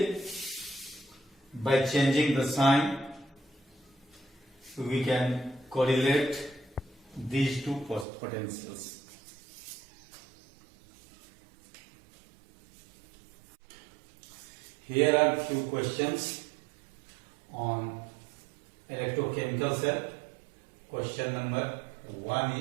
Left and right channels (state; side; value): drops out; left; at 8.1 s